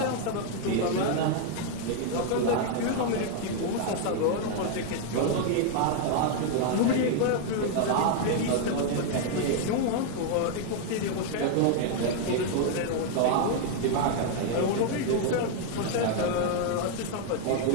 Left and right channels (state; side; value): different; both; correlation 0.00